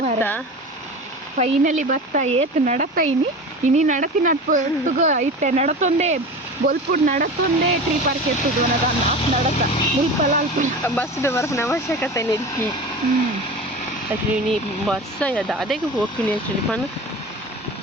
ಫೈನಲಿ ಭತ್ತ ಏತ್ ನಡತ ಇನಿ ನಡತಿ ನಡ್ಪುಗ ಇತ್ತೆ ನಡತೊಂದೇ ಬೊಲ್ಪುಡ್ ನಡತೊಂದೇ ಟ್ರೀ ಪಾರ್ಕ್ ಎತ್ತುದು ನಡತ ಮುಲ್ಪಲ ಅಲ್ಪ ಬಸ್ದು ಬರೋನ ಅವಶ್ಯಕತೆ ನಿಲ್ಕಿ. ಆ್ಯಕ್ಚುಲಿ ನೀ ಬಸ್ ಅದ ಅದಕ್ಕೆ ಹೋಗ್ತೀನಿ. ಆ್ಯಕ್ಚುಲಿ ಪನ್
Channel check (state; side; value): normal; both; correlation 0.32